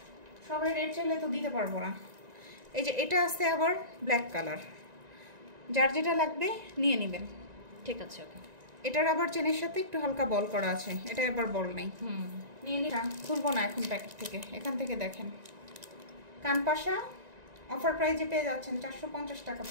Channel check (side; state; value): left; late; 1.9 ms